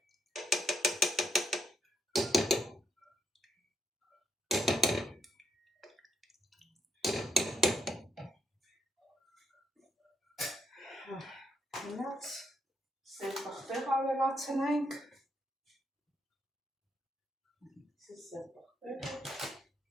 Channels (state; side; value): normal; both; correlation 0.76